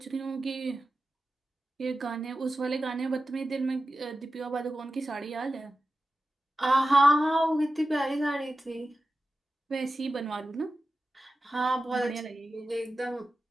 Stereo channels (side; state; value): both; normal; correlation 0.93